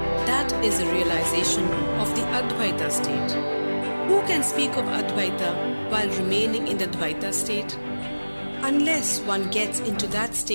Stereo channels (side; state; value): both; inverted; correlation -1.00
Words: That is a realization of the Advaita state. Who can speak of Advaita while remaining in the Dvaita state? Unless one gets into that